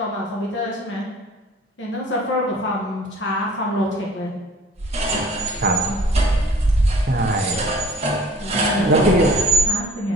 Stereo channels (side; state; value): both; normal; correlation 0.49